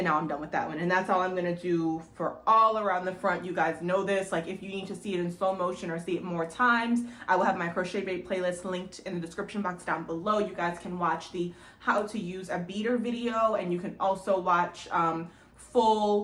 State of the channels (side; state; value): both; identical; correlation 1.00